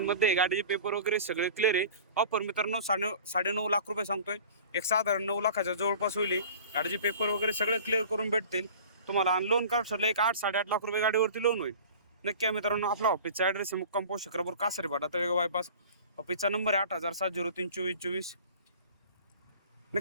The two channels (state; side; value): inverted; both; correlation -0.43